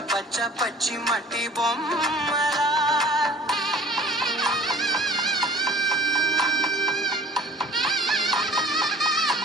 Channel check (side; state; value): both; normal; correlation 0.47